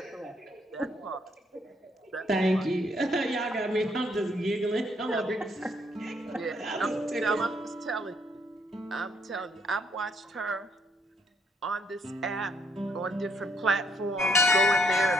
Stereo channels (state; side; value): normal; both; correlation 0.70